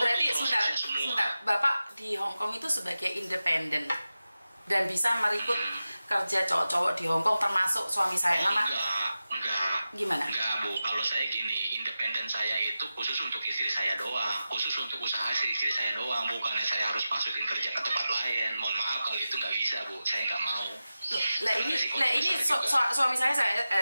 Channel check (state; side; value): inverted; both; correlation -0.93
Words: berarti prosesnya semua. sebentar. Bapak di Hong Kong itu sebagai independen dan bisa merekrut kerja cowok-cowok di Hong Kong termasuk suami saya. Nama Enggak. gimana? Enggak, Bu. Kalau saya gini, independen saya itu khusus untuk istri saya doang, khusus untuk usaha istri saya doang, bukannya saya harus masukin kerja ke tempat lain. Mohon maaf kalau itu nggak bisa, Bu. Saya nggak mau. Lah ini suami saya